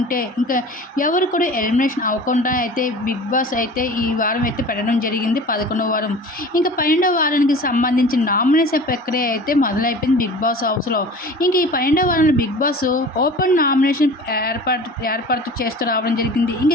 ఇంకా ఎవరు కూడా ఎలిమినేషన్ అవ్వకుండా అయితే బిగ్ బాస్ అయితే ఈ వారం అయితే పెట్టడం జరిగింది 11వ వారం. ఇంక 12వ వారానికి సంబంధించిన నామినేషన్ ప్రక్రియ అయితే మొదలైపోయింది బిగ్ బాస్ హౌస్‌లో. ఇంక ఈ 12వ వారంలో బిగ్ బాస్ ఓపెన్ నామినేషన్ ఏర్పాటు చేస్తూ రావడం జరిగింది. ఇంక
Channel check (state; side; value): normal; both; correlation 0.40